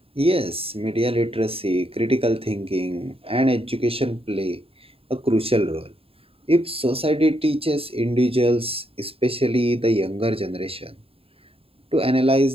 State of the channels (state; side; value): late; left; 0.27 ms